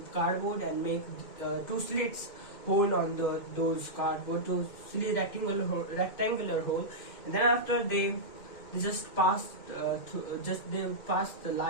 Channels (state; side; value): late; right; 2.0 ms